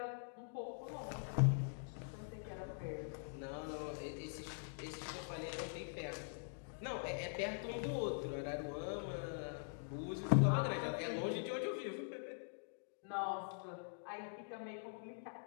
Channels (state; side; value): silent; right; digital silence